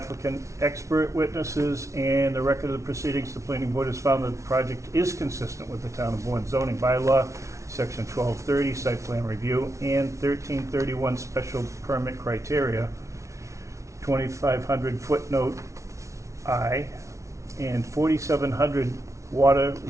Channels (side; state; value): left; late; 0.14 ms